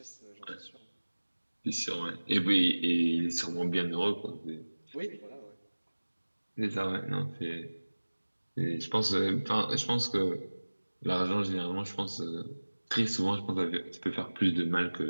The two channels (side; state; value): both; inverted; correlation -1.00